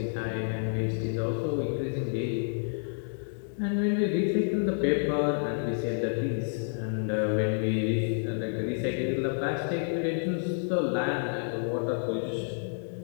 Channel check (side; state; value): right; silent; digital silence